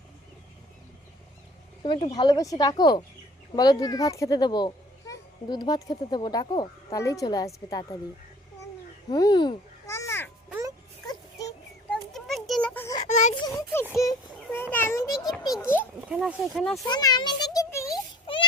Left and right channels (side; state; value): both; normal; correlation 0.51